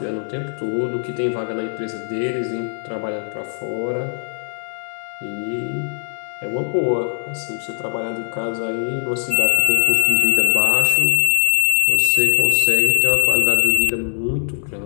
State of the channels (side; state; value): right; silent; digital silence